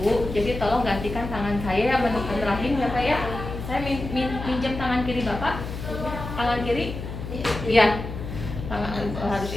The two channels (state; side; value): noise; left; hum, 8 dB below the sound